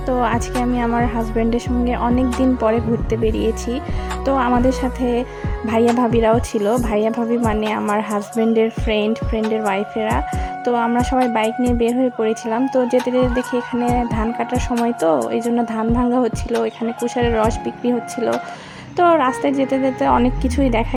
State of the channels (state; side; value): identical; both; correlation 1.00